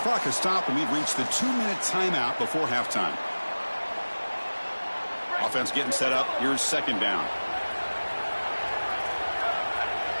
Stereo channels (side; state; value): both; inverted; correlation -1.00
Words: clock has stopped, and we've reached the 2-minute timeout before halftime. Offense getting set up. Here's second down.